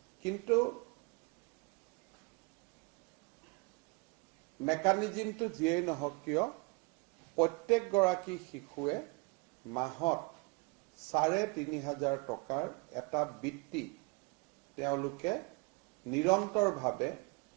কিন্তু মেকানিজমটো যিয়েই নহওক কিয় প্ৰত্যেকগৰাকী শিশুৱে মাহত ৩,৫০০ টকাৰ এটা বৃত্তি তেওঁলোকে নিৰন্তৰভাৱে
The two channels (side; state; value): left; quieter; 28.8 dB